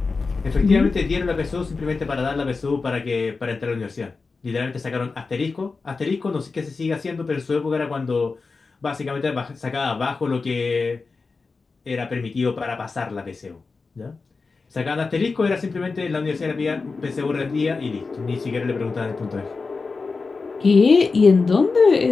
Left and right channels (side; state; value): right; quieter; 4.3 dB